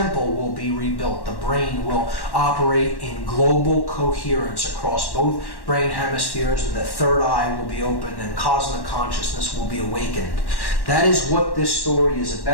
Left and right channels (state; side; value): late; right; 1.1 ms